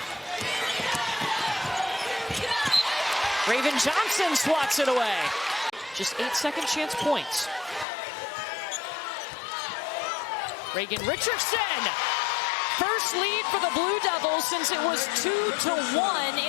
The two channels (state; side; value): drops out; right; at 7.9 s